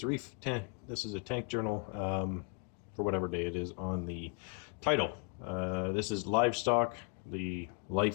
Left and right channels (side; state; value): right; quieter; 33.9 dB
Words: Reef. This is a tank journal for whatever day it is on the title. This is Livestock, the